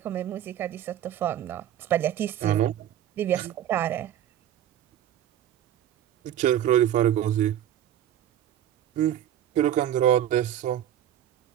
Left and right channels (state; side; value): quieter; left; 11.2 dB